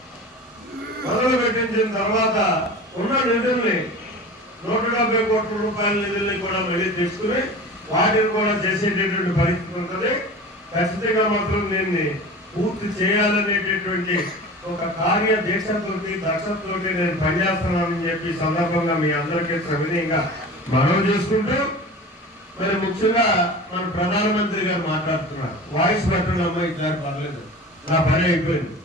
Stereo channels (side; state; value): both; normal; correlation 0.36